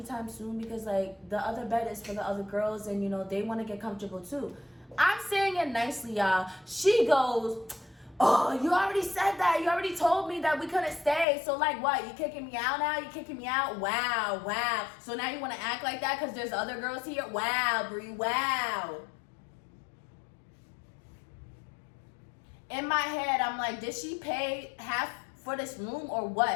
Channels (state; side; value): drops out; right; at 11.2 s